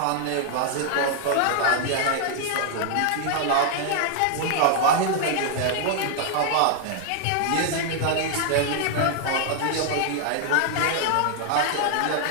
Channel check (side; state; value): both; different; correlation 0.00